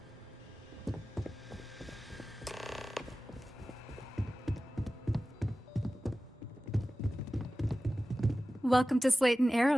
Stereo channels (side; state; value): both; normal; correlation 0.96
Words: Welcome to Slayton